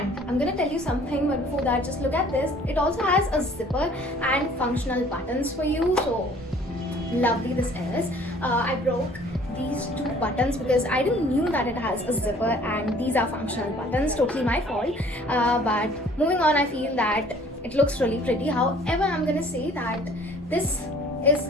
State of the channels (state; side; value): normal; both; correlation 0.54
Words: I'm gonna tell you something, but before that, just look at this. It also has a zipper and functional buttons for you, so lovely this is. I broke these two buttons because I didn't knew that it has a zipper, and these are functional buttons, totally my fault. But moving on, I feel that it looks really pretty. However, I'm gonna say that this is